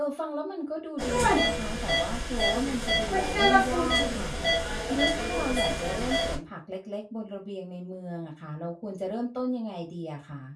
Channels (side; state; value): both; identical; correlation 1.00